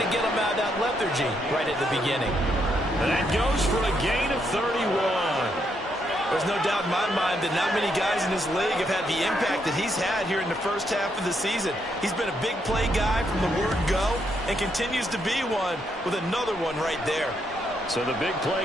to get them out of that lethargy right at the beginning. And that goes for a gain of 31. There's no doubt in my mind that not many guys in this league have had the impact that he's had here in the first half of the season. He's been a big play guy from the word go and continues to be one with another one right there. So the big play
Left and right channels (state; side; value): normal; both; correlation 0.77